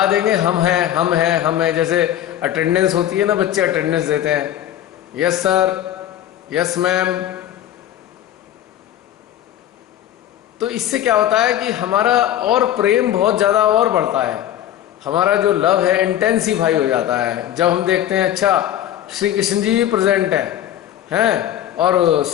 देंगे हम हैं हम हैं हम हैं। जैसे अटेंडेंस होती है ना, बच्चे अटेंडेंस देते हैं, यस सर, यस मैम। तो इससे क्या होता है कि हमारा और प्रेम बहुत ज़्यादा और बढ़ता है, हमारा जो लव है इंटेंसिफाई हो जाता है। जब हम देखते हैं अच्छा श्री कृष्ण जी भी प्रेजेंट हैं और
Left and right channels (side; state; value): right; quieter; 11.7 dB